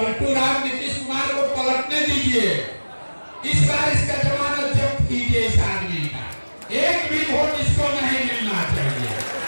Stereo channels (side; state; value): both; inverted; correlation -1.00